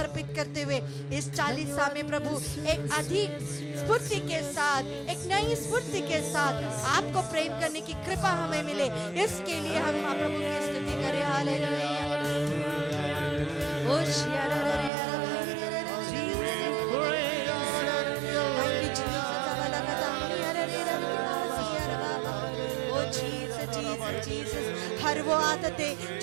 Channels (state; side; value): drops out; left; at 14.9 s